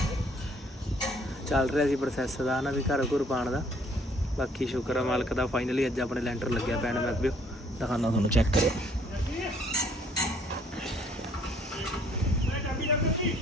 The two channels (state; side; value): normal; both; correlation 0.62